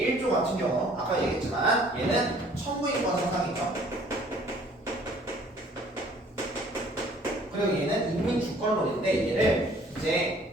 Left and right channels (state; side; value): normal; both; correlation 0.56